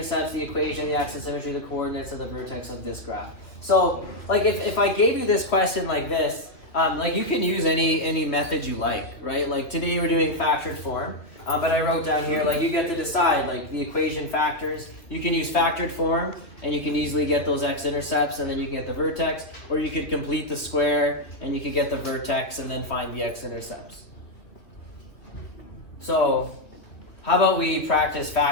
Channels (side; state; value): right; late; 2.5 ms